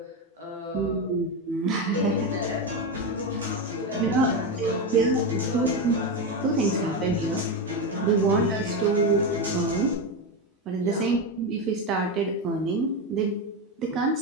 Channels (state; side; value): normal; both; correlation 0.13